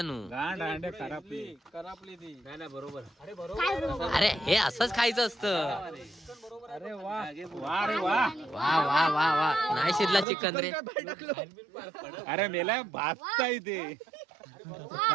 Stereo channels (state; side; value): drops out; left; at 10.2 s